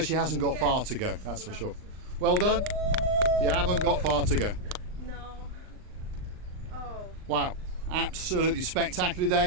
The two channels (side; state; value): left; late; 39 ms